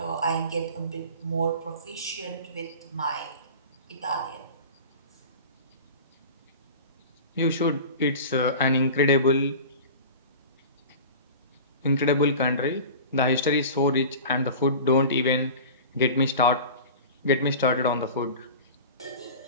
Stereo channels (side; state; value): both; inverted; correlation -0.36